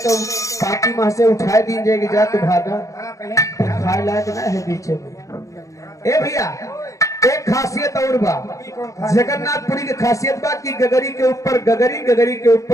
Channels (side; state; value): right; late; 0.15 ms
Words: पाती माह से उठाए दी जाएगी जा तो भागा हाँ, कहीं खाए लायक ना है बीचे में। ए भैया एक खासियत और बा, जगन्नाथपुरी की खासियत बा कि गगरी के ऊपर गगरी, गगरी के